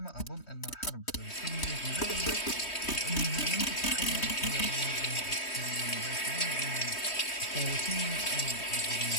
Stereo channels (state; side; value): late; right; 3.2 ms